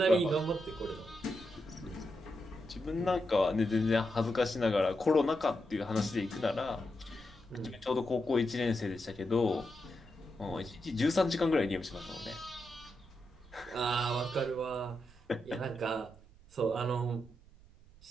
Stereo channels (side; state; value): right; noise; rumble, 23 dB below the sound